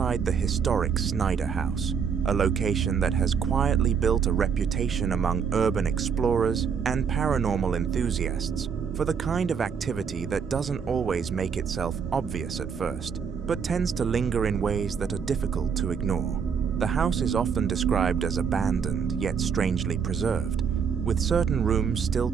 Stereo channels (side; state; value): left; quieter; 6.6 dB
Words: the historic Snyder house, a location that has quietly built a reputation among urban explorers and paranormal enthusiasts for the kind of activity that doesn't always make itself obvious at first, but tends to linger in ways that are difficult to ignore. The house is often described as abandoned yet strangely preserved, with certain rooms still